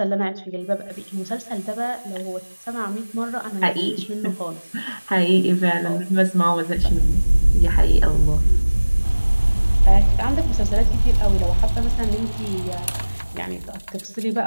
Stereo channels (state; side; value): inverted; both; correlation -1.00